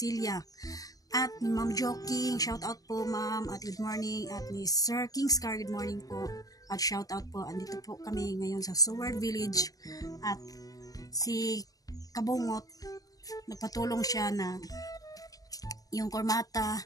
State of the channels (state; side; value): late; right; 0.18 ms